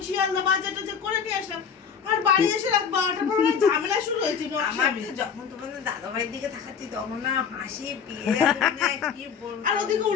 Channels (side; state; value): right; quieter; 6.9 dB